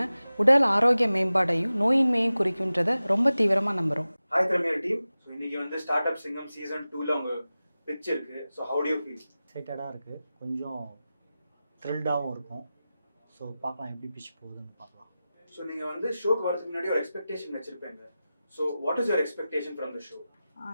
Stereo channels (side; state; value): both; inverted; correlation -0.95